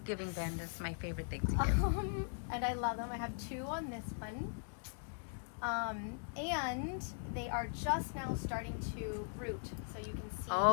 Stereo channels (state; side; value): silent; right; digital silence